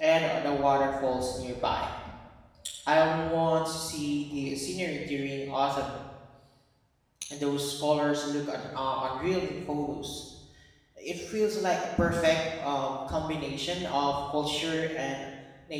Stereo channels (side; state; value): both; identical; correlation 1.00